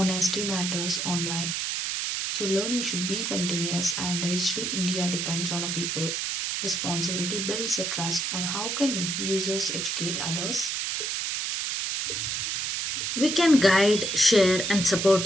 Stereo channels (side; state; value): right; noise; hiss, 1 dB below the sound